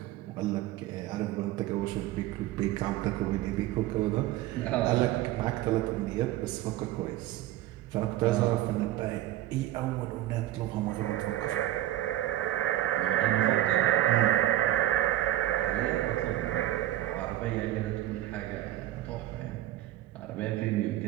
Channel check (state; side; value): quieter; left; 14.0 dB